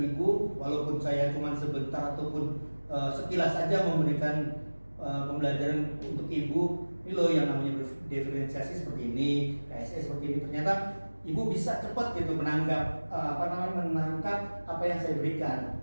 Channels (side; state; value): both; inverted; correlation -1.00